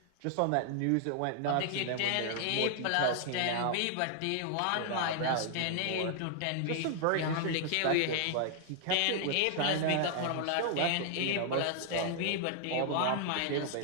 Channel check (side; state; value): both; different; correlation 0.00